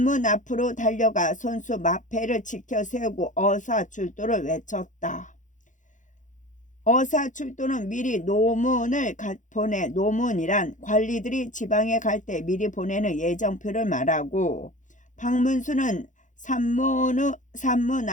앞으로 달려가 손수 마패를 지켜 세우고 어사출도를 외쳤다. 어사출도는 미리 노문을 보내. 노문이란 관리들이 지방에 갈 때 미리 보내는 예정표를 말하고, 박문수는 산문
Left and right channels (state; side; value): late; right; 0.36 ms